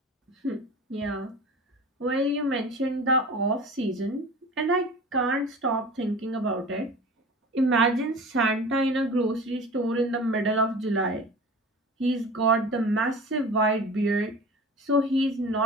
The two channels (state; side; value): normal; both; correlation 0.38